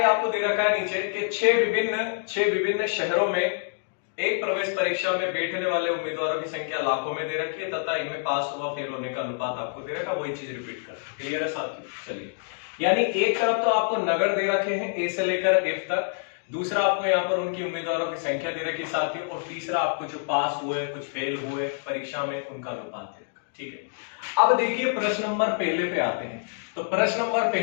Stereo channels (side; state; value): right; silent; digital silence